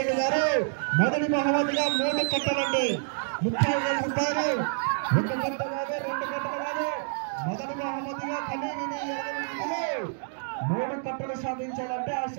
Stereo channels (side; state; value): left; silent; digital silence